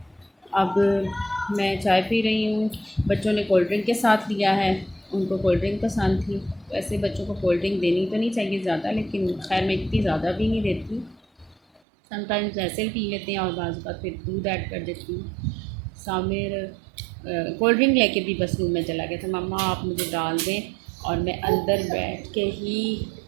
अब मैं चाय पी रही हूँ। बच्चों ने कोल्ड ड्रिंक के साथ लिया है, उनको कोल्ड ड्रिंक पसंद थी। वैसे बच्चों को कोल्ड ड्रिंक देनी तो नहीं चाहिए ज़्यादा, लेकिन खैर मैं इतनी ज़्यादा भी नहीं देती, समटाइम्स ऐसे ही पी लेते हैं और बाज़ बात फिर दूध ऐड कर देती हूँ। सामिर कोल्ड ड्रिंक लेके भी बस रूम में चला गया था, मम्मा आप मुझे डाल दें और मैं अंदर बैठ के ही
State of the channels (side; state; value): left; drops out; at 11.8 s